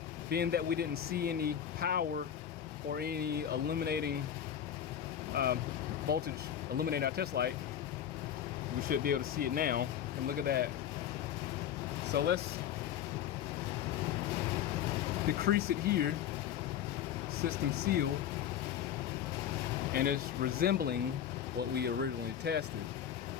being that we didn't see any power or any illuminating voltage illuminate our test light, we should be able to see it now. And look at that. So let's decrease it here. System seal, and it's resembling what we originally tested.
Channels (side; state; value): right; quieter; 9.7 dB